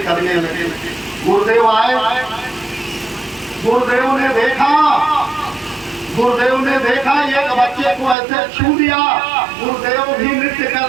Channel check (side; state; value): left; drops out; at 8.2 s